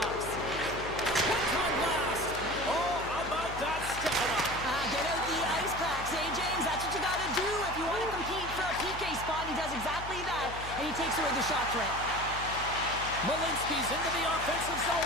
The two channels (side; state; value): left; noise; hum, 11 dB below the sound